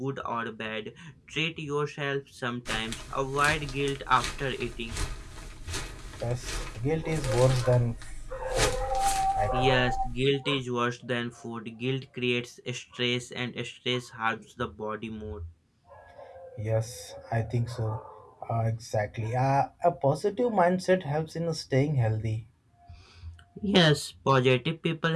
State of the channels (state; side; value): identical; both; correlation 1.00